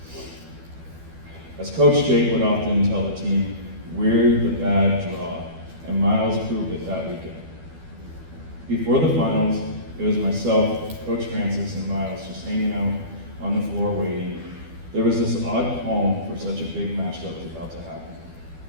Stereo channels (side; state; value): left; late; 12 ms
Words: As Coach Jake would often tell the team, we're the bad draw, and Miles proved it that weekend. Before the finals, it was myself, Coach Francis, and Miles just hanging out on the floor waiting. There was this odd calm for such a big match that was about to happen.